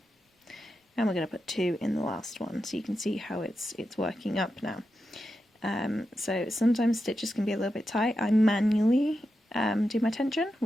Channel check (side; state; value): both; normal; correlation 0.89